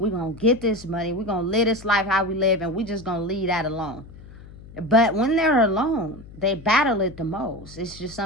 going to get this money. We're going to live this life how we live, and we're just going to leave that alone. But when they're alone, they battle it the most. It's just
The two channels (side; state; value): left; noise; hum, 18 dB below the sound